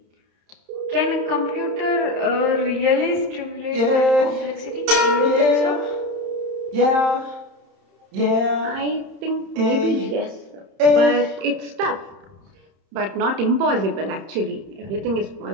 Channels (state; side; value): late; left; 31 ms